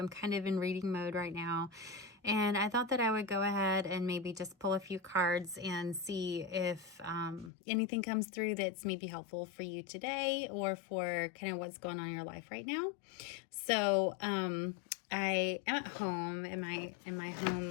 kind of in reading mode right now, and I thought that I would go ahead and maybe just pull a few cards and see if anything comes through that's maybe helpful for you today or for kind of what's going on in your life right now. So I am at home in my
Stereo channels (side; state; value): right; drops out; at 7.5 s